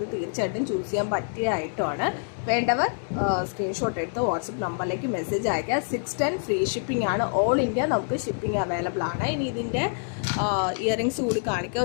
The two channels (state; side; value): silent; right; digital silence